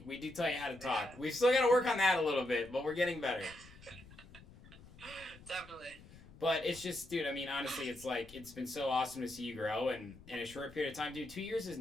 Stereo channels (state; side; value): noise; left; rumble, 20 dB below the sound